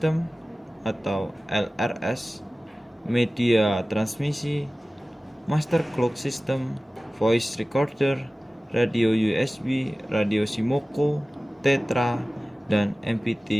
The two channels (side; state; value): both; normal; correlation 0.97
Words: atau LRS, Media Transmisi, Master Clock System, Voice Recorder, Radio USB, Radio Simoko, Tetra, dan